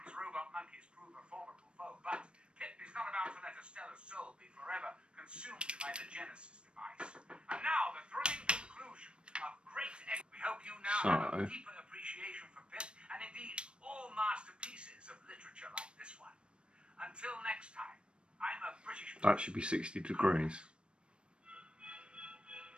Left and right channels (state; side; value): late; left; 0.057 ms